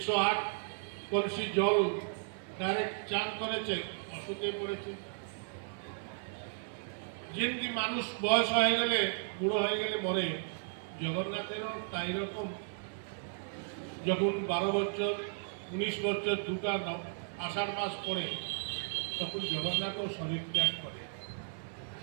কলসি জল ডাইরেক্ট চান করেছে, অসুখে পড়েছে। যেমনি মানুষ বয়স হয়ে গেলে, বুড়ো হয়ে গেলে মরে, জগন্নাথেরও তাই রকম। যখন 12 বছর 19 বছর দুটা আষাঢ় মাস পড়ে, তখন জগন্নাথও শরীর ত্যাগ করে।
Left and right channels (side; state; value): left; silent; 55 dB below the other